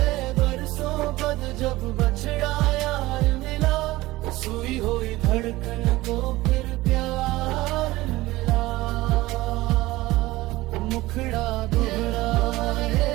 बरसों बाद जब बछड़ा यार मिला, सुई हुई धड़कन को फिर प्यार मिला। मुखड़ा दोहराए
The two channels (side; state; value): left; quieter; 18.6 dB